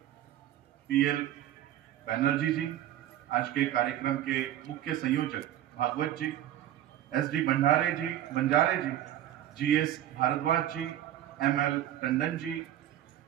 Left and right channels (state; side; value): quieter; left; 12.2 dB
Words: पीएल बैनर्जी जी, आज के कार्यक्रम के मुख्य संयोजक भागवत जी, एसडी बंजारे जी, जीएस भारद्वाज जी, एमएल टंडन जी,